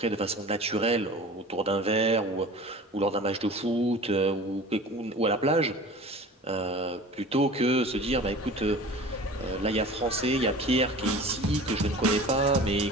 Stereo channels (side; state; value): both; normal; correlation 0.40